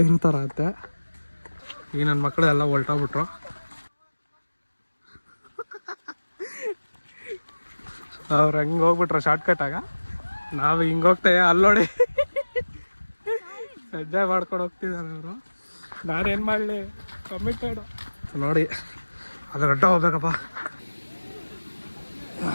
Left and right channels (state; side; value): inverted; both; correlation -1.00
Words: ಈಗ ನನ್ನ ಮಕ್ಕಳು ಎಲ್ಲ ಹೊಲ್ಟೋಗ್ಬಿಟ್ರು. ಅವ್ರು ಹಂಗೆ ಹೋಗ್ಬಿಟ್ರು ಶಾರ್ಟ್ಕಟಾಗ. ನಾವು ಹಿಂಗೆ ಹೋಗ್ತೇವೆ, ಅಲ್ಲೋಡಿ ಎಂಜಾಯ್ ಮಾಡ್ಕೊಂಡು ಹೋಗ್ತಿದ್ದಾರೆ ಅವರು. ನಾನೇನು ಮಾಡಲಿ, ಕಮಿಟೆಡು ನೋಡಿ. ಅದು ಗಂಟ ಹೋಗ್ಬೇಕಪ್ಪ.